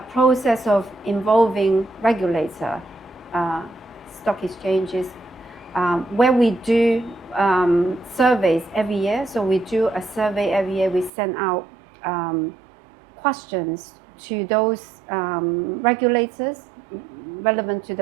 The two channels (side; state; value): left; drops out; at 11.1 s